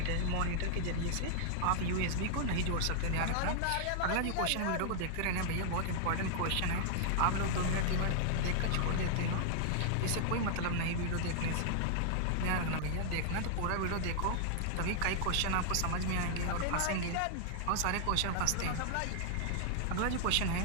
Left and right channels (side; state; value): both; different; correlation -0.01